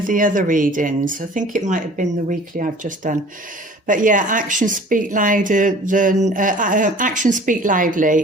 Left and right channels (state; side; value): normal; both; correlation 0.47